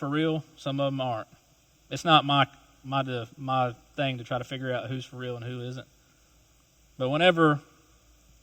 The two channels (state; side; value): identical; both; correlation 1.00